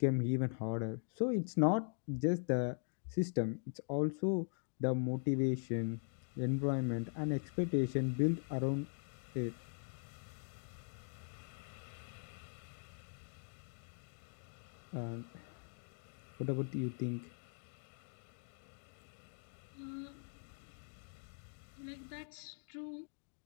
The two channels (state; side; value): silent; right; digital silence